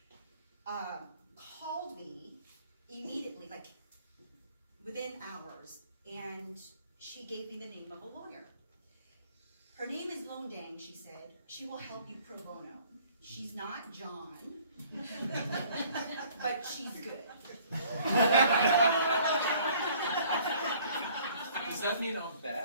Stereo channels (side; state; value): both; inverted; correlation -0.56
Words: called me immediately, like within hours, and she gave me the name of a lawyer. Her name is Lone Dang, she said. She will help you pro bono. She's not John, but she's good. Does that mean I'm